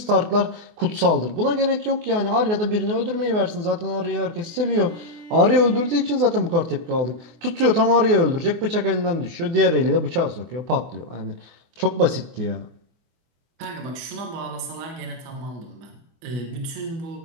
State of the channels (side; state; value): left; late; 24 ms